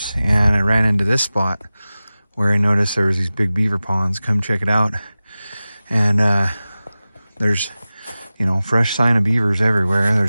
and I ran into this spot where I noticed there was these big beaver ponds. Come check it out. And there's, fresh sign of beavers everywhere.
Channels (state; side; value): inverted; both; correlation -0.96